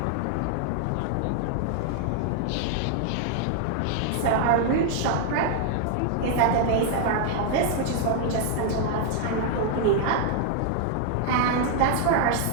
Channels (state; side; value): different; both; correlation 0.00